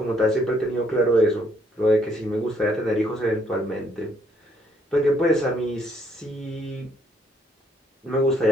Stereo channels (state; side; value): normal; both; correlation 0.68